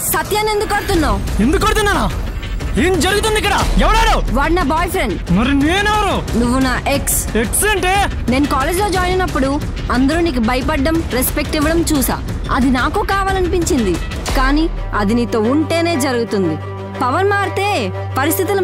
సత్యాన్ని ఎందుకు కొడుతున్నావు? ఎందుకు కొడుతున్నానా? ఏం జరుగుతుంది ఇక్కడ? ఎవడాడు? వాడు నా బాయ్ ఫ్రెండ్. మరి నేనెవరు? నువ్వు నా ఎక్స్. ఎక్స్ అంటే? నేను కాలేజ్లో జాయిన్ అయినప్పుడు అందరూ నీకు భయపడడం, రెస్పెక్ట్ ఇవ్వడం చూసా. అది నాకు కావాలనిపించింది, కానీ అది నీతో ఉంటేనే జరుగుతుంది. పవర్ మారితే పరిస్థితులు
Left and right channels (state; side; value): identical; both; correlation 1.00